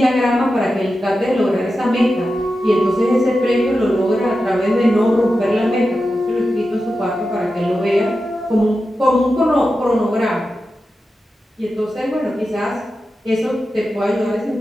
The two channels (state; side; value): normal; both; correlation 0.91